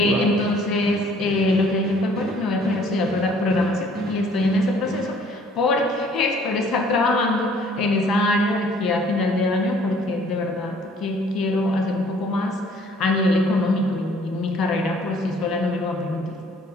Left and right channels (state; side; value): normal; both; correlation 0.57